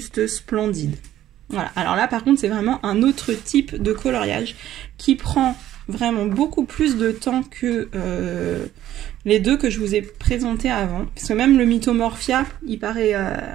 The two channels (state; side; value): quieter; left; 12.8 dB